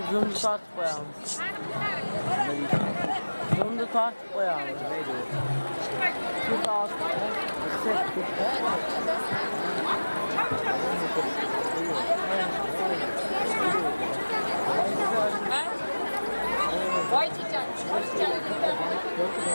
zoom start koyalım. Zoom'da start koyalım. Şu altı. Vay çiçek.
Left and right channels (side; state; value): both; inverted; correlation -1.00